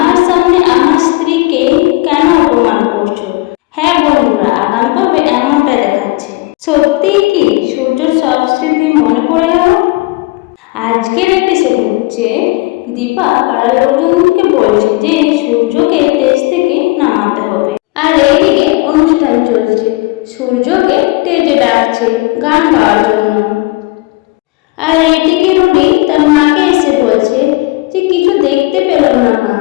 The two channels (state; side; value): quieter; right; 22.4 dB